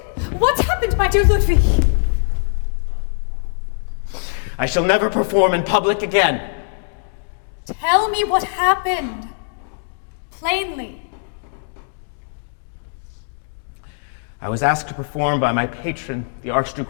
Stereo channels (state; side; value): silent; right; digital silence